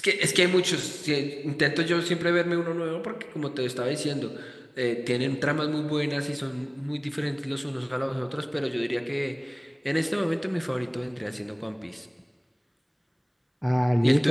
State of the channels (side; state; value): both; identical; correlation 1.00